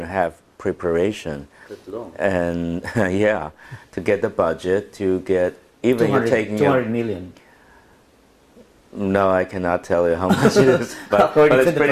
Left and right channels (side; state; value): both; identical; correlation 1.00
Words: a half preparation, that's long. and yeah, to get the budget, to get even you're taking 200 million. No, I cannot tell you how much it is, but According it's to the